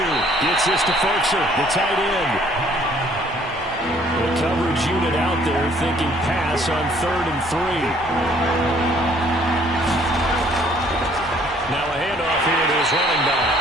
gets this to Ferkser, the tight end. The coverage unit out there thinking pass on 3rd and 3. Now a handoff here to his running back.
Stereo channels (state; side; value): normal; both; correlation 0.60